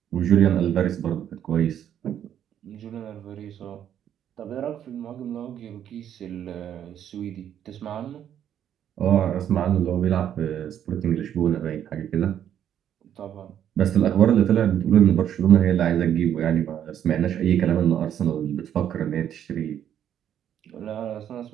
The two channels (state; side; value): quieter; left; 9.9 dB